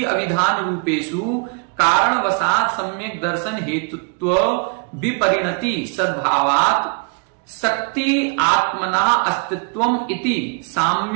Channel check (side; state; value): left; quieter; 37.4 dB